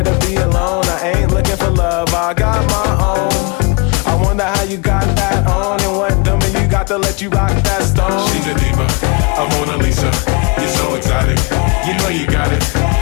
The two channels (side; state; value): right; quieter; 30.4 dB